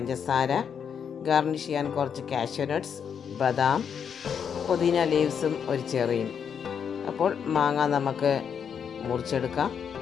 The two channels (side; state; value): right; quieter; 7.4 dB